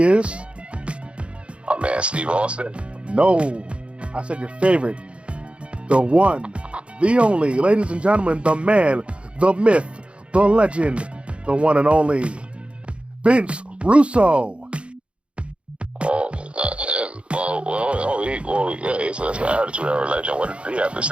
is? Oh man, Steve Austin. No, I said your favorite. The one, the only, ladies and gentlemen, the man, the myth, the legend, the one and only, Vince Russo. Oh, not him. Yeah, he's an attitude era legend. What did he have to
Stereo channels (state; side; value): late; left; 0.059 ms